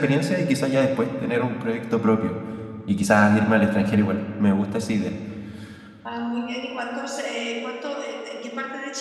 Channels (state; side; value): identical; both; correlation 1.00